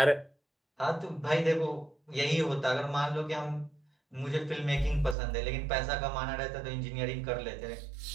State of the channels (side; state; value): left; drops out; at 5.2 s